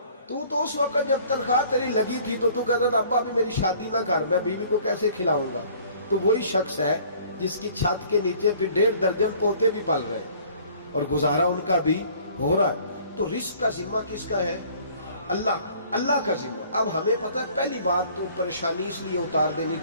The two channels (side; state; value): both; inverted; correlation -0.54